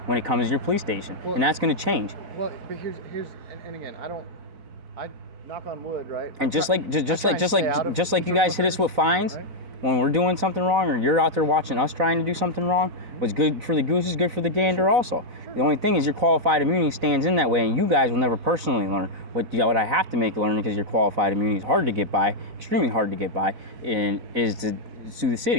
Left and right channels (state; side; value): late; left; 4.0 ms